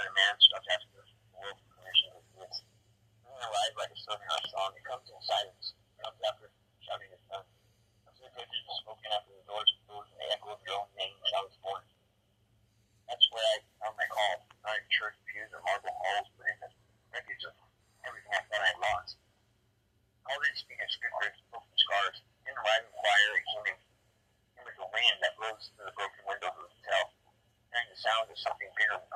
a man stops asking the world for permission to exist. Moving alive like a song in our song, it comes in silence. It comes after shouting his son. Comes in the pitches of smoking after the doors closed and the echo of your own name sounds born. That's where I found my call, not in church pews or marble halls, but in the wreckage of everything I thought I had lost. I didn't speak in scripture, spoke in scars. Didn't arrive in choir, it came with the wind that blows through the broken windows of the hotel, hearing the sound of something bigger than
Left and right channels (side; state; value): both; identical; correlation 1.00